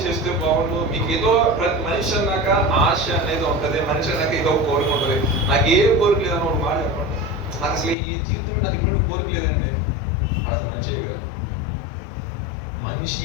చేస్తే బాగుండు. మీకు ఏదో ప్రతి మనిషి అన్నాక ఆశ అనేది ఉంటుంది, మనిషి అన్నాక ఏదో కోరిక ఉంటుంది. నాకు ఏ కోరిక లేదని ఒక మాట చెప్పండి, నాకు అసలు ఈ జీవితంలో నాకు ఎటువంటి కోరిక లేదండి, అది మంచిగా కాదు. మనిషి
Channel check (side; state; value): right; drops out; at 8.0 s